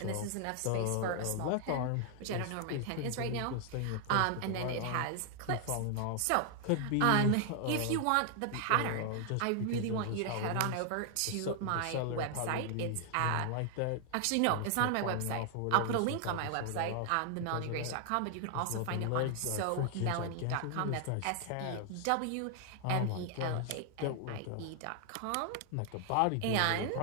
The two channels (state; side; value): different; both; correlation 0.00